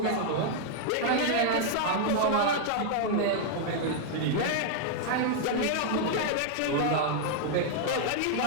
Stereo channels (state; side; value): different; both; correlation 0.00